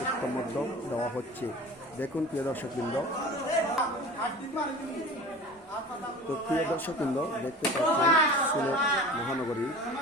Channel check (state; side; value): normal; both; correlation 0.38